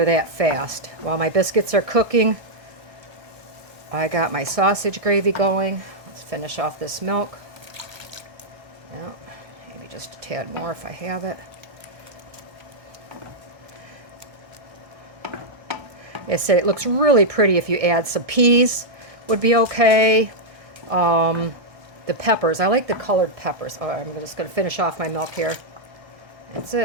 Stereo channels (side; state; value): left; late; 1.3 ms